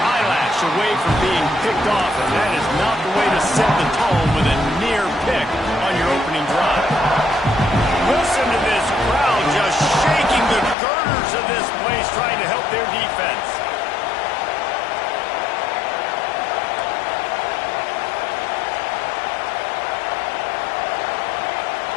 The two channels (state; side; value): drops out; right; at 10.8 s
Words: away from being picked off, and that is not the way to set the tone with a near pick on your opening drive. Listen to this crowd just shaking the girders of this place, trying to help their defense.